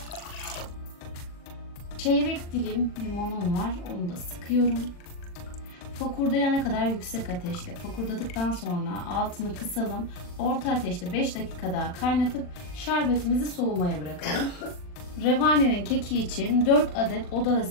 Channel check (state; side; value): late; right; 40 ms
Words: Çeyrek dilim limonum var. Onu da sıkıyorum. Fokurdayana kadar yüksek ateşte. Fokurdadıktan sonra altını kısalım. Orta ateşte 5 dakika daha kaynatıp şerbetimizi soğumaya bırakalım. Revanenin keki için 4 adet oda